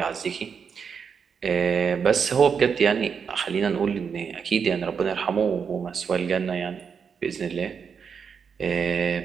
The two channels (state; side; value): quieter; left; 6.4 dB